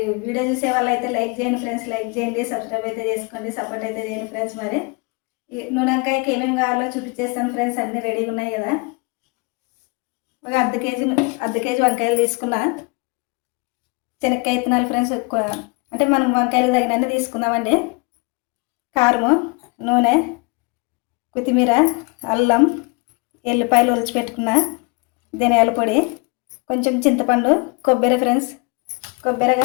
వీడియో చూసే వాళ్ళు అయితే లైక్ చేయండి ఫ్రెండ్స్, లైక్ చేయండి, సబ్స్క్రైబ్ అయితే చేసుకోండి, సపోర్ట్ అయితే చేయండి ఫ్రెండ్స్. మరి వంకాయకి ఏమేమి కావాలో చూపించేస్తాను ఫ్రెండ్స్. అన్నీ రెడీగా ఉన్నాయి కదా. ఒక అర్ధ కేజీ వంకాయలు తీసుకున్నా. శనక్కాయ విత్తనాలు ఫ్రెండ్స్, అంటే మనం వంకాయలు తగినన్ని తీసుకుందామండి. కారము, నూనె, కొత్తిమీర, అల్లం, ఎల్లిపాయలు ఒలిచిపెట్టుకున్న, ధనియాల పొడి, కొంచెం చింతపండు, కొబ్బరి ఫ్రెండ్స్, కొబ్బరి,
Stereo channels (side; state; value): right; quieter; 30.1 dB